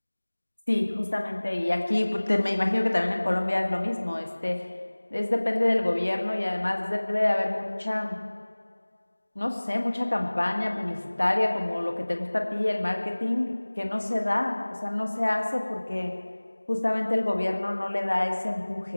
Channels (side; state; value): both; inverted; correlation -1.00